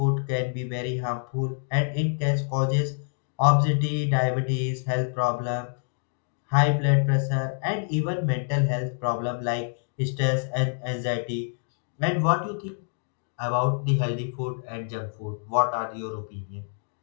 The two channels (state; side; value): silent; right; digital silence